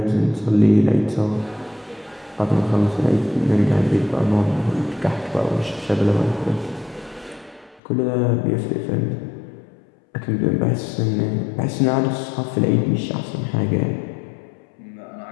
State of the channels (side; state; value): right; drops out; at 7.8 s